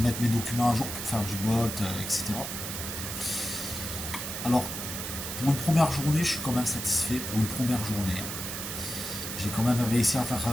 mes documents à jour pour faire du Bolt, etc. Alors, pour une première journée, je suis quand même satisfait. Pour une première journée, j'ai quand même réussi à faire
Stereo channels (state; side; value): noise; right; hiss, 5 dB below the sound